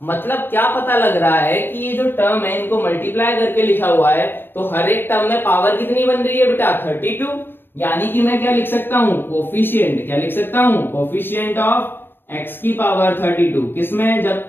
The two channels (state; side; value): late; right; 0.10 ms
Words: मतलब क्या पता लग रहा है कि ये जो टर्म है इनको मल्टीप्लाई करके लिखा हुआ है, तो हर एक टर्म में पावर कितनी बन रही है बेटा 32, यानी कि मैं क्या लिख सकता हूं कोफिशिएंट, क्या लिख सकता हूं कोफिशिएंट ऑफ x की पावर 32, किसमें